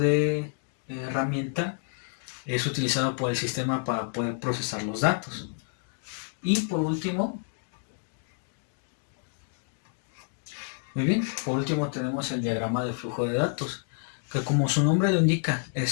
herramienta es utilizado por el sistema para poder procesar los datos. Y por último, tenemos el diagrama de flujo de datos, que como su nombre lo indica,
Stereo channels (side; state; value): right; silent; 59 dB below the other